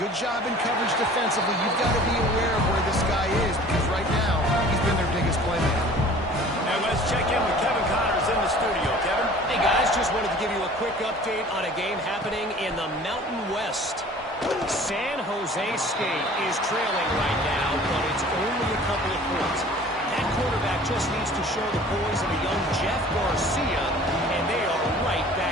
job in coverage defensively. You've got to be aware of where this guy is because right now he's been their biggest playmaker. And let's check in with Kevin Connors in the studio. Kevin? Hey, guys, just wanted to give you a quick update on a game happening in the Mountain West. San Jose State is trailing right now, but it's only a couple of points. That quarterback just needs to show the boys of a young Jeff Garcia, and they are right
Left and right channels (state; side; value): normal; both; correlation 0.47